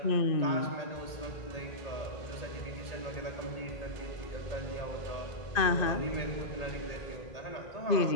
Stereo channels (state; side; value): late; right; 1.9 ms